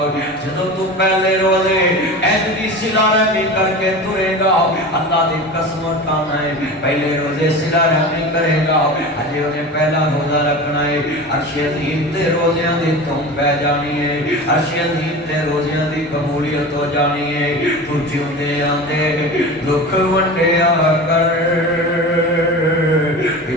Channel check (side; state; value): both; normal; correlation 0.31